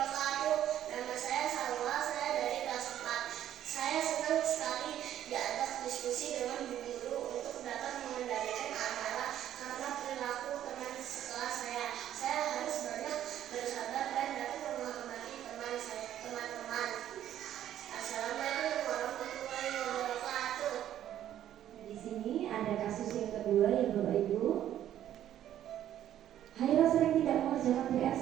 Nama saya Salwa, saya dari kelas 4. Saya senang sekali diajak diskusi dengan Bu Guru untuk dapat mengendalikan amarah karena perilaku teman sekelas saya. Saya harus banyak bersabar dan dapat menghormati teman-teman. Assalamualaikum warahmatullahi wabarakatuh. Di sini ada kasus yang kedua ya Bapak Ibu. Haira sering tidak mengerjakan PR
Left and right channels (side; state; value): left; quieter; 11.5 dB